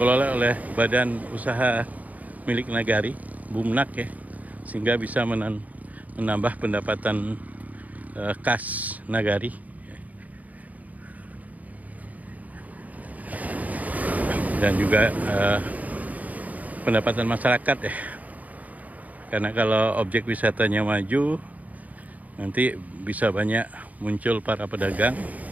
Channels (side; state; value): left; late; 0.074 ms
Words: oleh badan usaha milik nagari, Bumnak ya, sehingga bisa menambah pendapatan kas nagari. Dan juga pendapatan masyarakat ya, karena kalau objek wisatanya maju nanti bisa banyak muncul para pedagang